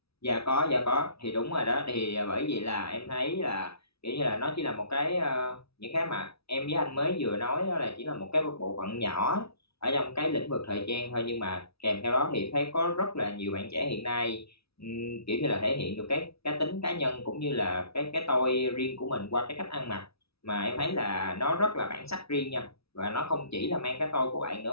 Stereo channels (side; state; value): right; late; 0.77 ms